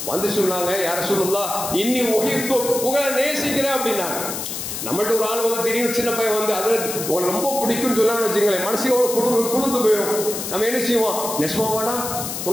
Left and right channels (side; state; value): left; noise; hiss, 6 dB below the sound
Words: வந்து சொன்னாங்க, யா ரசூலுல்லாஹ் இன்னி உஹிப்பு, உங்களை நேசிக்கிறேன் அப்படின்னாங்க. நம்மள்ட்ட ஒரு ஆள் வந்து திடீர்னு சின்ன பையன் வந்து அதில் உங்களை ரொம்ப பிடிக்கும்னு சொல்லான்னு வச்சுங்களேன், மனசையோட குளிர்ந்து போயிடும். நம்ம என்ன செய்வோம், நெசமாவாடா